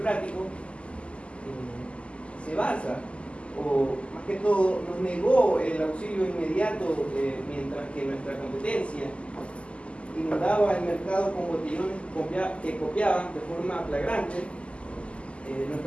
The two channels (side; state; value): right; late; 0.056 ms